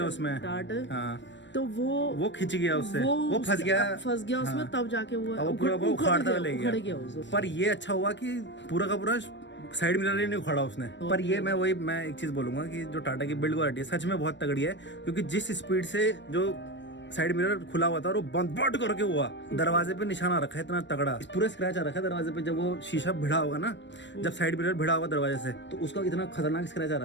हैं उसमें टाट। तो वो खिंच गया उससे, वो फंस गया उसमें, तब जाके वो पूरा उखाड़ता ले गया। पर ये अच्छा हुआ कि पूरा का पूरा साइड मिरर ही नहीं उखाड़ा उसने। पर ये मैं एक चीज बोलूंगा कि जो टाटा की बिल्ड क्वालिटी है सच में बहुत तगड़ी है, क्योंकि जिस स्पीड से जो साइड मिरर खुला हुआ था और वो बंद करके हुआ, दरवाजे पे निशाना रखा है इतना तगड़ा, पूरा स्क्रैच आ रखा है दरवाजे पे। जब वो शीशा भिड़ा होगा ना, जब साइड मिरर भिड़ा होगा दरवाजे से, तो उसका इतना खतरनाक स्क्रैच आ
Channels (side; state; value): right; late; 0.53 ms